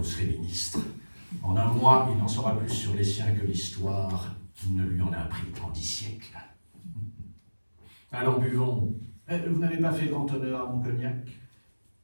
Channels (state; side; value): inverted; both; correlation -1.00